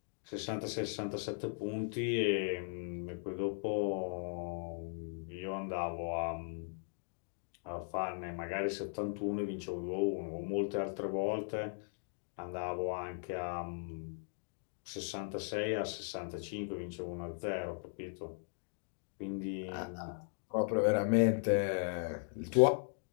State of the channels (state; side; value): silent; right; digital silence